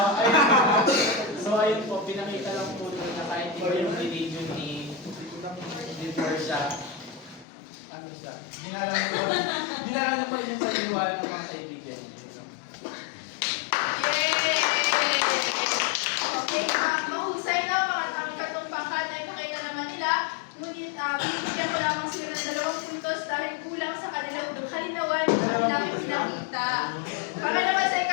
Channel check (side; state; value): right; drops out; at 7.5 s